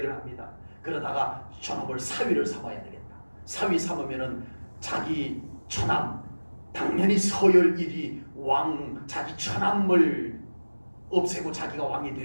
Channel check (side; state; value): both; inverted; correlation -1.00